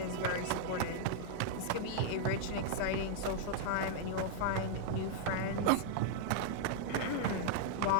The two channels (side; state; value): both; different; correlation -0.01